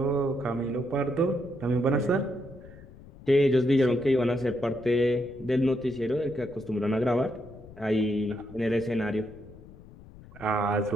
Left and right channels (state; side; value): noise; left; rumble, 19 dB below the sound